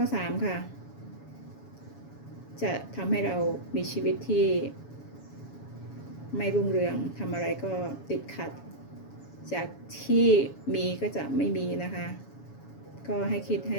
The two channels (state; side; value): late; right; 7.2 ms